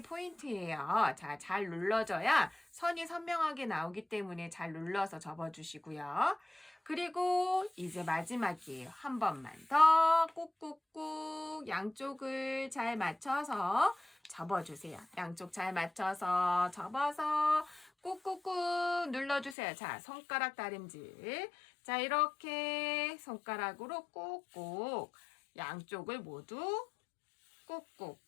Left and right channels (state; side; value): drops out; right; at 19.6 s